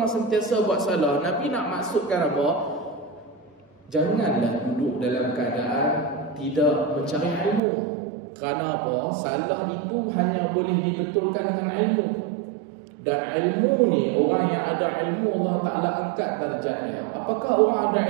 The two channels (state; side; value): drops out; left; at 7.6 s